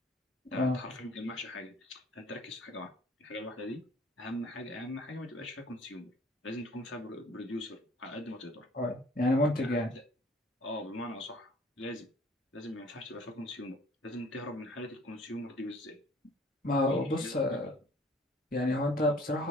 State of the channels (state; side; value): normal; both; correlation 0.54